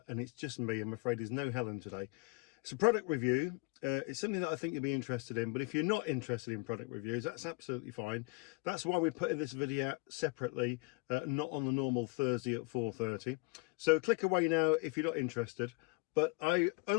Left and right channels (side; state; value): right; quieter; 27.3 dB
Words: and it's just me. I'm afraid there's no Helen today. It's a product review. It's something that I think you'll be interested in, but if you're not interested in product reviews, that's absolutely fine. That's why we're putting this video out separately, not on the normal Thursday at 4:30. So click away now if you're not interested. But I